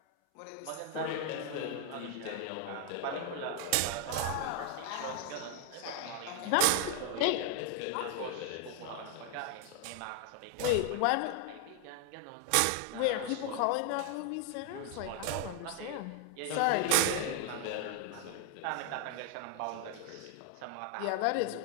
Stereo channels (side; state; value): both; different; correlation 0.00